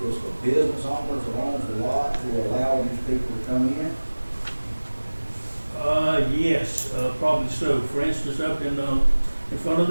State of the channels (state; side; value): inverted; both; correlation -1.00